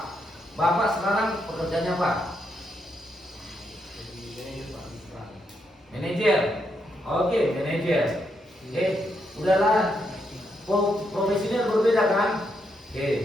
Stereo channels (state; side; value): normal; both; correlation 0.80